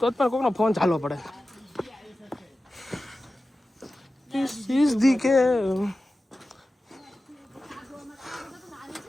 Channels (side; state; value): both; normal; correlation 0.94